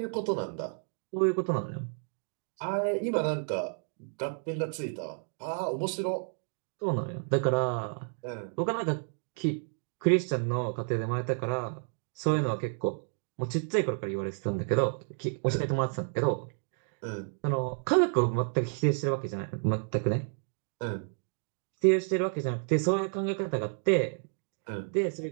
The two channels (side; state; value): left; silent; 57 dB below the other